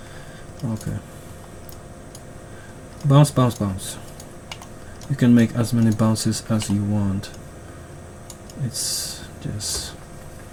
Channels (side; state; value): both; identical; correlation 1.00